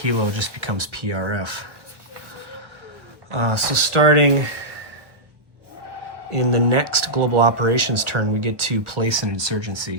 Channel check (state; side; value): late; left; 1.1 ms